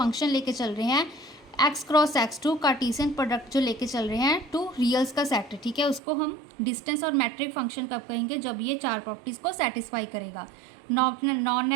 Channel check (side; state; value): left; drops out; at 6.0 s